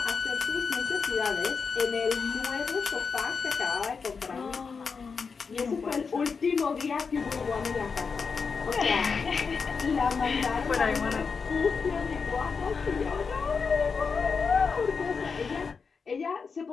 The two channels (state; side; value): quieter; right; 5.3 dB